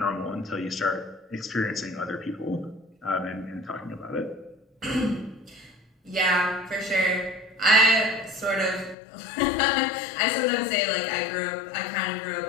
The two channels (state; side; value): drops out; right; at 9.0 s